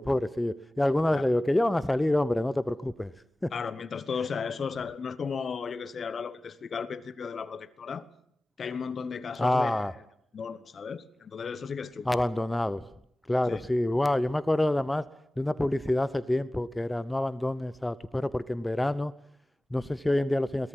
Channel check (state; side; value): normal; both; correlation 0.97